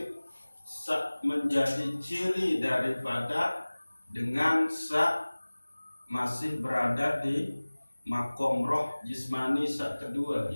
menjadi ciri daripada dengan masih berada di makom roh jismani kedua,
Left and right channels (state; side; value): inverted; both; correlation -1.00